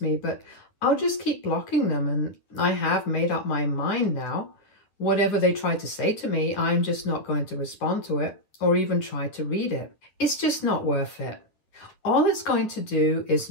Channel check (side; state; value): right; late; 9.6 ms